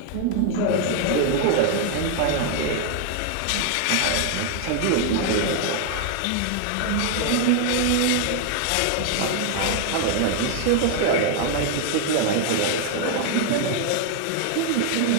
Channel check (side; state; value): both; different; correlation 0.00